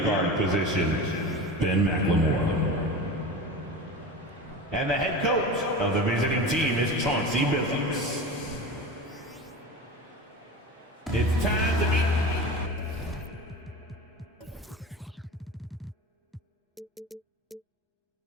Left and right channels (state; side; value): normal; both; correlation 0.31